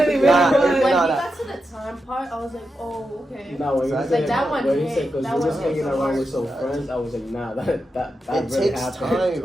Nah, was. When we nah. got to the time part, I was like, oh, okay. No, when you Like, said that one when you hit. said because That we one was hit hanging so around hard. with some friends, I was like, nah, that It really takes happened. time.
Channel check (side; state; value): both; normal; correlation 0.88